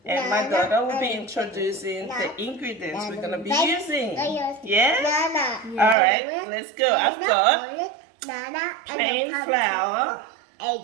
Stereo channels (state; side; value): drops out; left; at 6.0 s